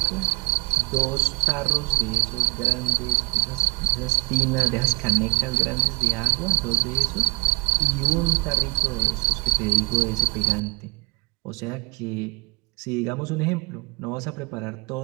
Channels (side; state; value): left; quieter; 29.1 dB